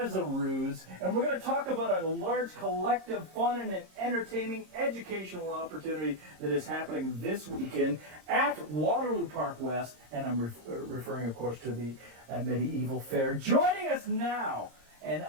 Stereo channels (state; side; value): late; left; 26 ms